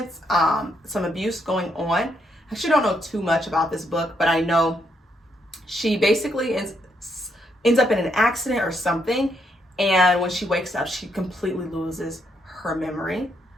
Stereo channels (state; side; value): normal; both; correlation 0.76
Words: some abuse going on. I actually don't know too much about this book, but I know she basically ends up in an accident or something. And when she wakes up, she completely loses her memory.